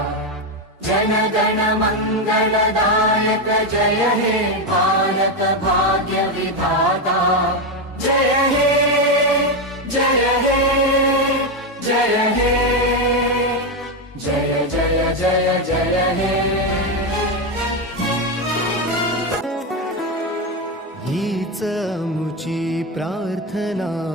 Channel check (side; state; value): both; normal; correlation 0.09